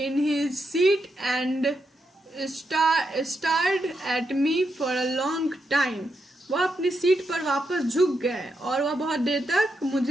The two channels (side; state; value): both; normal; correlation 0.83